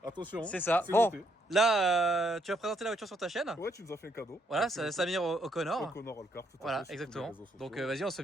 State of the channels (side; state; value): both; normal; correlation 0.73